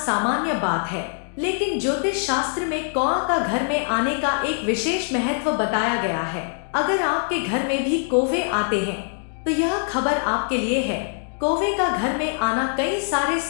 बात है, लेकिन ज्योतिष शास्त्र में कौआ का घर में आने का एक विशेष महत्व बताया गया है। अगर आपके घर में भी कौवे आते हैं तो यह खबर आपके लिए है। कौवे का घर में आना कई सारे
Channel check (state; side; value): silent; right; digital silence